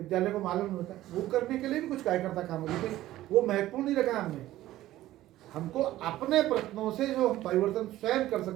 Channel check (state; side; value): quieter; left; 14.9 dB